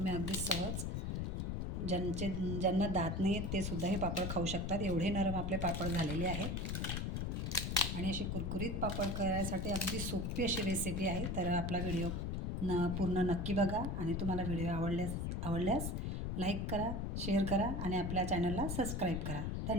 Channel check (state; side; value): noise; left; rumble, 1 dB below the sound